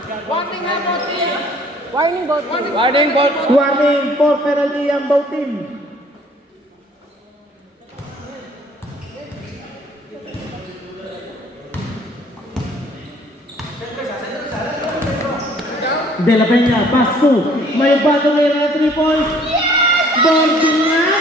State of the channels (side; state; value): both; normal; correlation 0.57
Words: Warning for penalty ang both team. De La Peña, Pasto. May bago ngayon na 3 points.